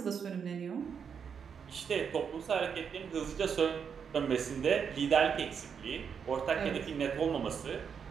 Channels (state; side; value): quieter; left; 6.9 dB